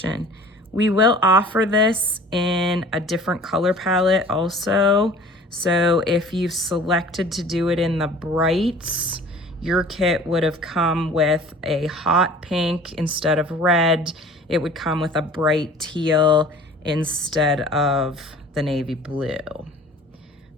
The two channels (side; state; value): both; normal; correlation 0.46